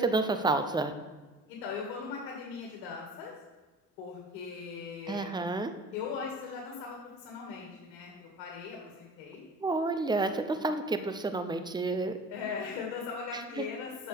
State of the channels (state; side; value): normal; both; correlation 0.41